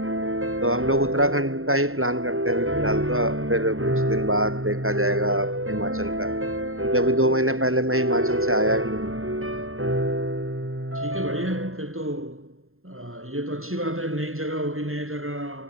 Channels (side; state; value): left; late; 0.61 ms